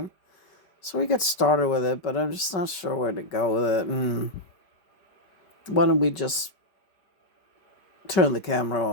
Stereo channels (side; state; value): right; late; 4.9 ms